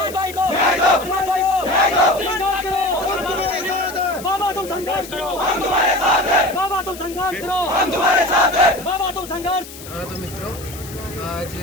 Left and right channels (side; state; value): left; noise; hiss, 15 dB below the sound